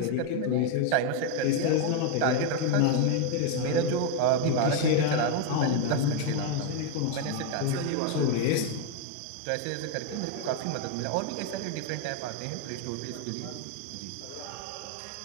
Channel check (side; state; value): both; different; correlation 0.01